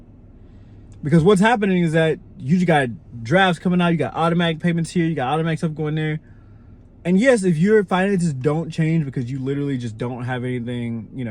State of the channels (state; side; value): identical; both; correlation 1.00